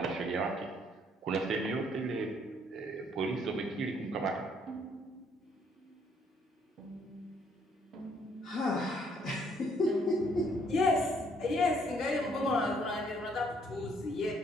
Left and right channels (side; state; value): both; normal; correlation 0.66